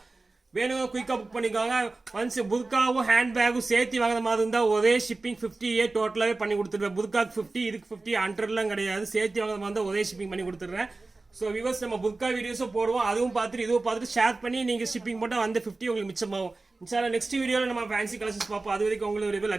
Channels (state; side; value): quieter; left; 3.4 dB